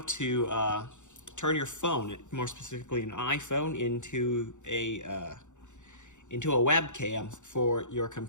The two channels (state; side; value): late; right; 0.85 ms